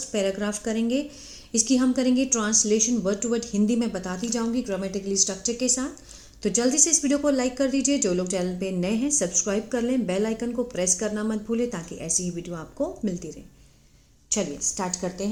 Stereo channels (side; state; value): both; identical; correlation 1.00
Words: पैराग्राफ करेंगे। इसकी हम करेंगे translation word to word. Hindi में बताती जाऊंगी ग्रामेटिकली स्ट्रक्चर के साथ। तो जल्दी से इस वीडियो को लाइक कर दीजिए। जो लोग चैनल पे नए हैं सब्सक्राइब कर लें, बेल आइकन को प्रेस करना मत भूलें ताकि ऐसी ही वीडियो आपको मिलती रहे। चलिए स्टार्ट करते